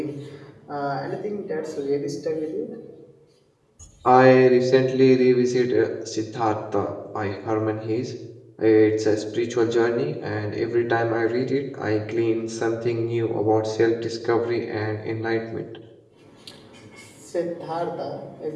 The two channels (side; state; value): both; identical; correlation 1.00